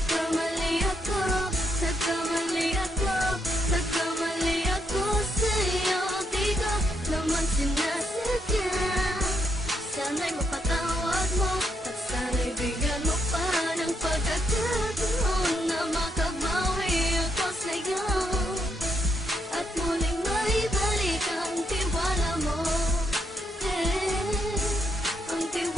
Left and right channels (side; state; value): both; normal; correlation 0.78